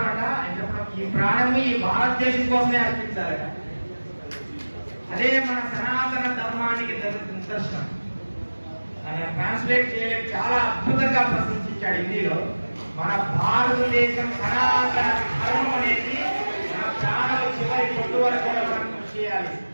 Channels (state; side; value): inverted; both; correlation -1.00